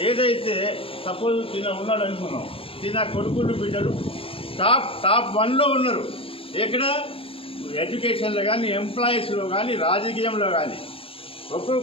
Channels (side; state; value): right; late; 0.27 ms